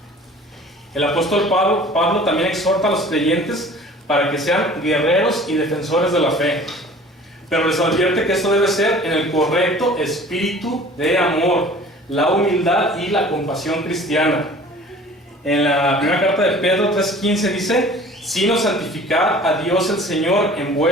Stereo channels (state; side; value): normal; both; correlation 0.46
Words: El apóstol Pablo también exhorta a los creyentes para que sean guerreros y defensores de la fe, pero les advierte que esto debe ser en el correcto espíritu de amor, la humildad y la compasión cristiana. En la primera carta de Pedro 3:15 dice: sino santificad a Dios el Señor en